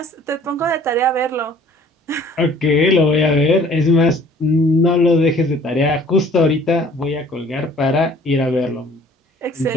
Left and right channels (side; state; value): both; normal; correlation 0.54